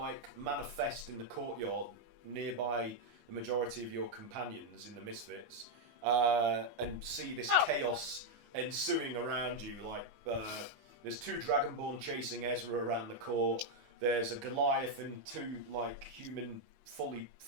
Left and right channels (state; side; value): late; left; 19 ms